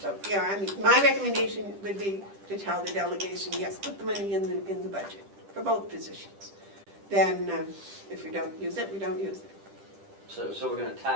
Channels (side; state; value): left; late; 10 ms